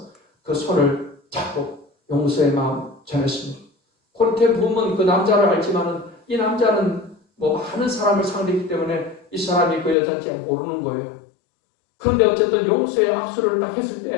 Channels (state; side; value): drops out; right; at 10.0 s